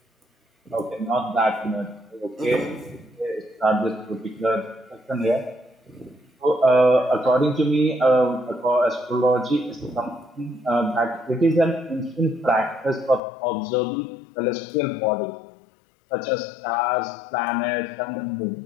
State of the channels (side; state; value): right; drops out; at 13.2 s